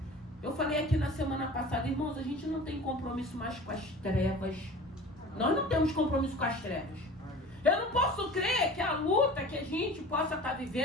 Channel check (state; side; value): normal; both; correlation 0.39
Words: Eu falei aqui na semana passada, irmãos, a gente não tem compromisso mais com as trevas. Nós não temos compromisso com as trevas. Eu não posso crer que a luta que a gente possa estar